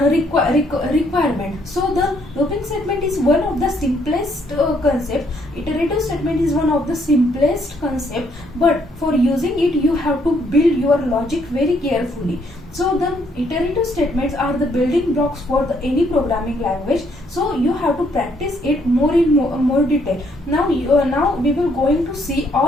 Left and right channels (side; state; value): both; normal; correlation 0.69